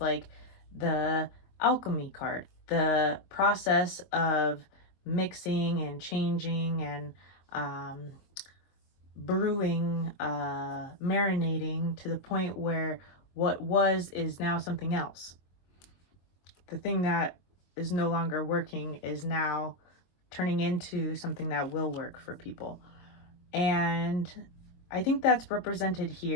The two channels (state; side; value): late; right; 22 ms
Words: like the alchemy card, the process of mixing and changing and brewing, marinating to the point where what was is now something else. The thing that is no longer working is now turning into something that will work for people. And I think that's represented